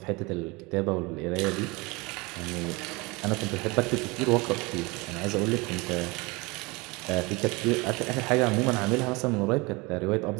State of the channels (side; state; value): left; quieter; 25.3 dB